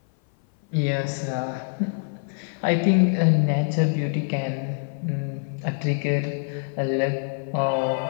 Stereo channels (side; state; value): right; silent; 57 dB below the other